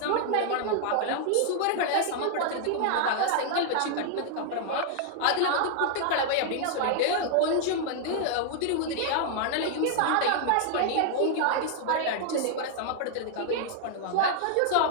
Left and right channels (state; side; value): different; both; correlation -0.01